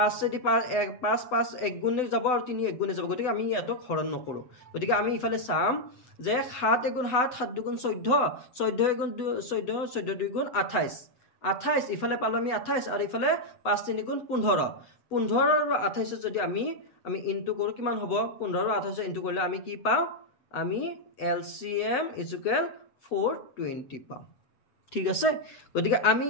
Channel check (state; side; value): late; right; 7.9 ms